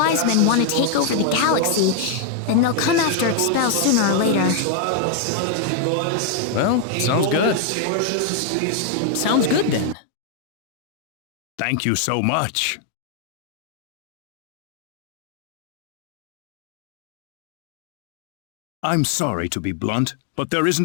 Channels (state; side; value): different; both; correlation 0.00